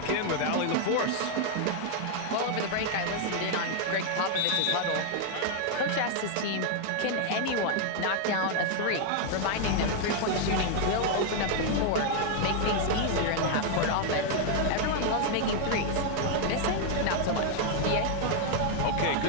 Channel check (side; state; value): both; different; correlation 0.00